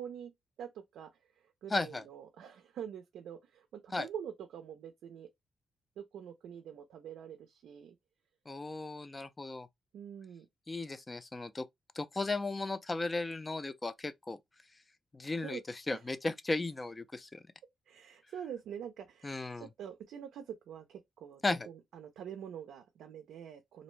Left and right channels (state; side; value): normal; both; correlation 0.88